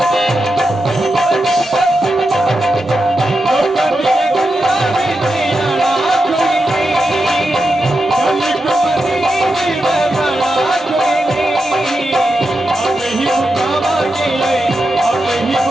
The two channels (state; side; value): normal; both; correlation 0.88